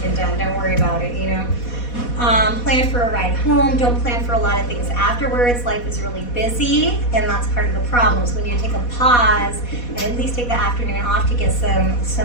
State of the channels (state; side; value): late; right; 4.1 ms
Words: done. Don't worry about it, you know. Plan for a ride home. Don't plan for a lot of things afterwards. Life is really busy, and that's part of the problem. So we need to take a pause and at least take the afternoon off to get